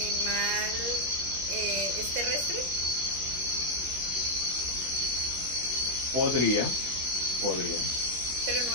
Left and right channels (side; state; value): left; late; 17 ms